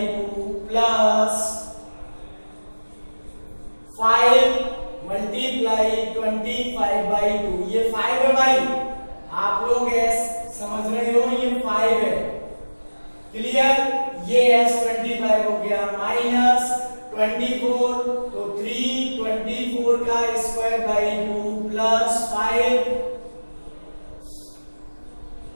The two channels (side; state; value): both; inverted; correlation -1.00